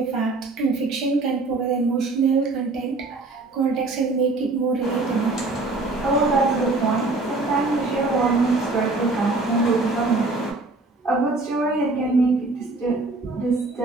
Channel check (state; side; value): quieter; left; 3.3 dB